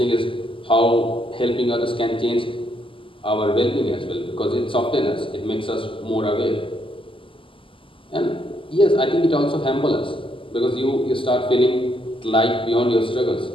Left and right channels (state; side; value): late; right; 0.25 ms